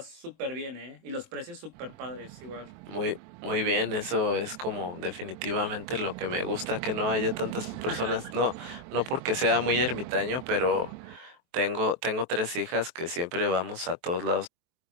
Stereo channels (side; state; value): left; late; 23 ms